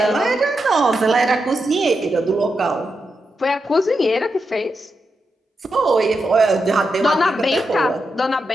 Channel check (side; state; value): both; normal; correlation 0.86